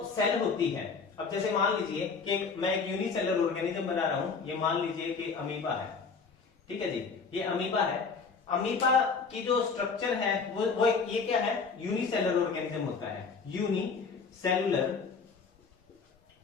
सेल होती है, अब जैसे मान लीजिए कि मैं एक यूनिसेलुलर ऑर्गेनिज्म बना रहा हूं, ये मान लीजिए कि अमीबा है, ठीक है जी, ये अमीबा है। अमीबा की जो स्ट्रक्चर है वो ये क्या है, यूनिसेलुलर ऑर्गेनिज्म होता है, यूनिसेलुलर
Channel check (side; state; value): right; quieter; 5.0 dB